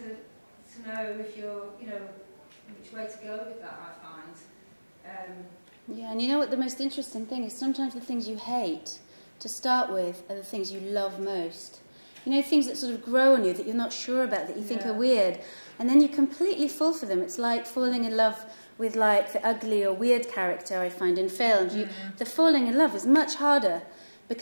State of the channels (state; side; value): inverted; both; correlation -1.00